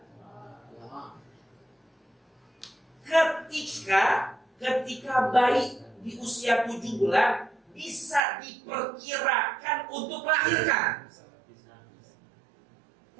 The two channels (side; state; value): left; drops out; at 8.2 s